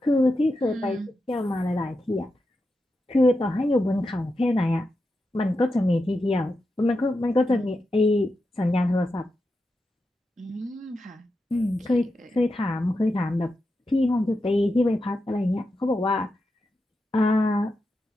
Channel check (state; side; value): normal; both; correlation 0.88